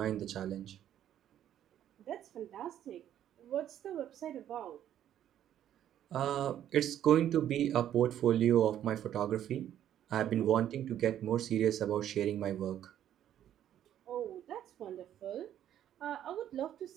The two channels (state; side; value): quieter; left; 11.0 dB